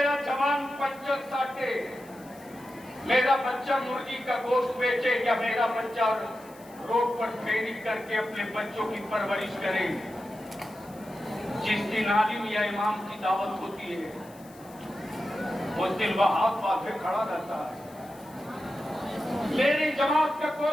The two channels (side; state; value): left; noise; hiss, 24 dB below the sound